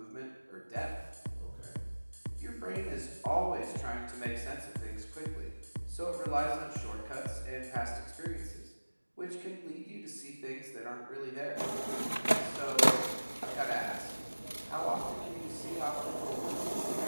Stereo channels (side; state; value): both; inverted; correlation -1.00